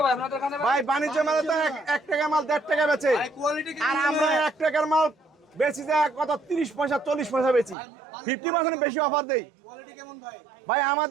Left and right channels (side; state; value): left; drops out; at 7.8 s